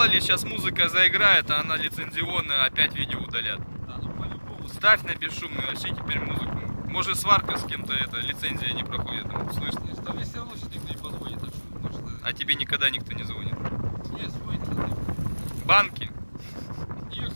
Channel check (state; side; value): inverted; both; correlation -1.00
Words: ли, сейчас музыка заиграет, а она лицензионная, опять видео удалят. Да, ну по-любому. Ставь на бесшумный, вообще теперь музыку. Может, сварка с кем-то, это лицензия не проходит, слышно? Там мне все равно сейчас никто не позвонит, так что, может, А тебе никогда никто не звонит. нет, звонит. Банки И,